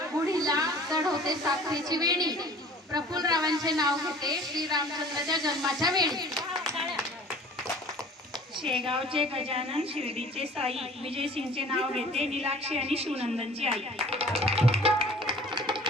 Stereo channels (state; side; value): normal; both; correlation 0.48